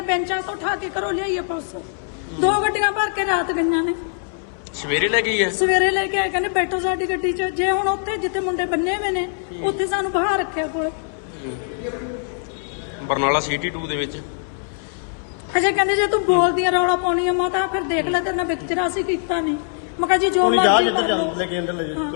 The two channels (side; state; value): right; silent; 64 dB below the other